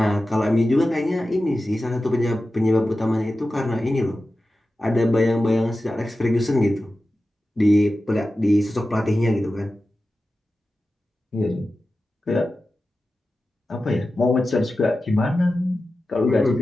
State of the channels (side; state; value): both; normal; correlation 0.94